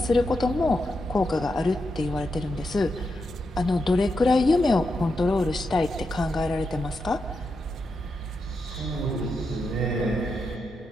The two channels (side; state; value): both; normal; correlation 0.86